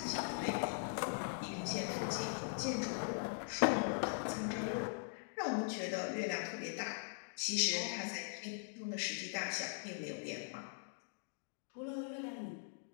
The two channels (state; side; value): silent; right; digital silence